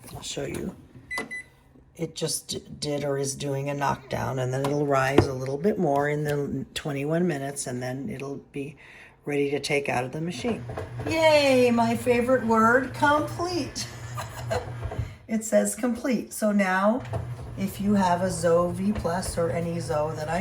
I'll show you. It just did or is doing a knockdown, and then it'll rise a little bit more in the 21 minutes, and then it'll be ready to take out of the machine. Yay, my favorite word, complete. It says complete. So now, if you have a Zoe V Plus or any Zoe that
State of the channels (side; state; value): both; identical; correlation 1.00